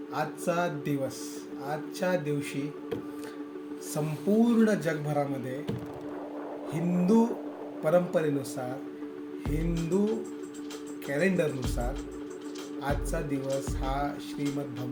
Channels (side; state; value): both; identical; correlation 1.00